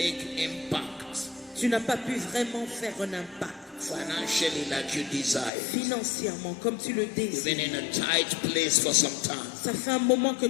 impact Tu n'as pas pu vraiment faire un impact financially like you desire. financièrement comme tu le You've been désires. in a tight place for some time. Ça fait un moment que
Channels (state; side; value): drops out; right; at 5.5 s